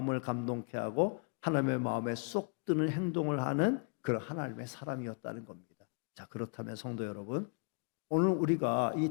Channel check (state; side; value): quieter; right; 38.9 dB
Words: 감동케 하고 하나님의 마음에 쏙 드는 행동을 하는 그런 하나님의 사람이었다는 겁니다. 자, 그렇다면 성도 여러분, 오늘 우리가 이